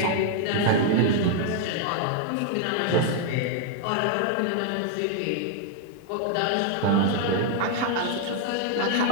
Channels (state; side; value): different; both; correlation 0.00